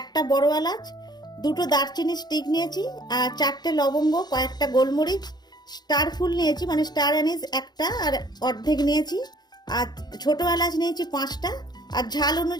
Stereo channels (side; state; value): right; late; 0.20 ms